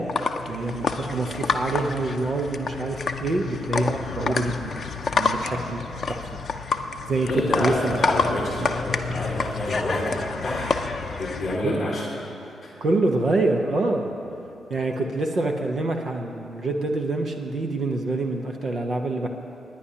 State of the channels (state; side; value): normal; both; correlation 0.78